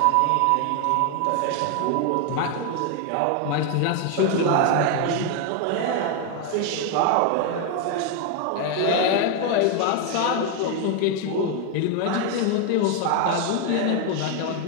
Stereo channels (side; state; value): both; different; correlation 0.01